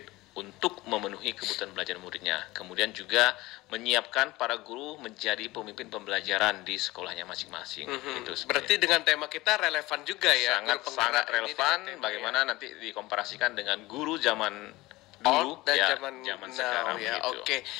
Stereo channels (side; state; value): right; quieter; 19.6 dB